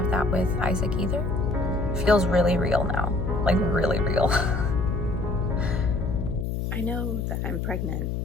that with Isaac either. Feels really real now. Like, really real. I know that I'm pregnant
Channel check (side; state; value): left; noise; hum, 2 dB below the sound